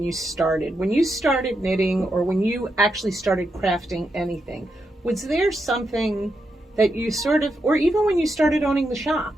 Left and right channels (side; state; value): both; normal; correlation 0.84